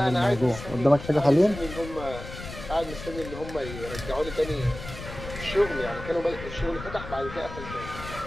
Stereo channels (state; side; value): noise; left; rumble, 11 dB below the sound